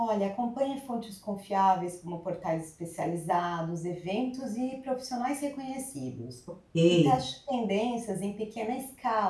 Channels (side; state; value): both; identical; correlation 1.00